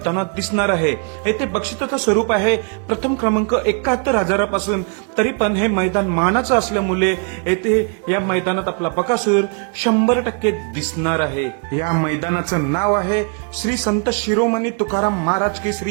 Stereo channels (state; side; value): quieter; left; 39.6 dB